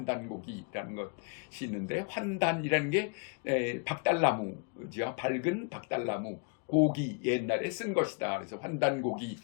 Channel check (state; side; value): quieter; right; 36.4 dB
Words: 것이 있는데 환단이라는 게 박달나무죠. 밝은 박달나무 고기 옛날에 쓴 것이다. 그래서